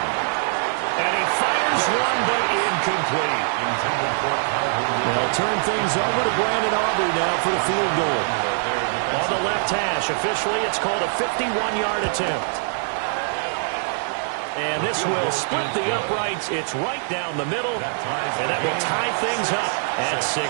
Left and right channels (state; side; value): silent; left; digital silence